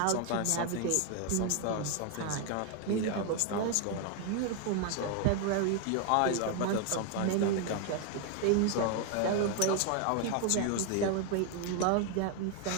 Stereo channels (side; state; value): both; different; correlation 0.01